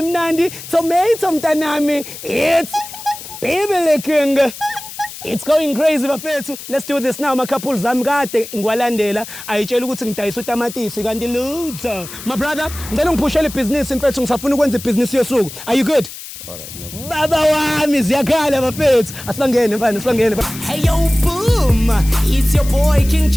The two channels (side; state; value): left; noise; hiss, 13 dB below the sound